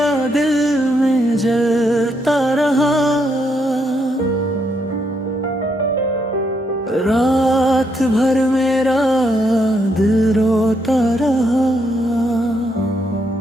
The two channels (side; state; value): both; normal; correlation 0.77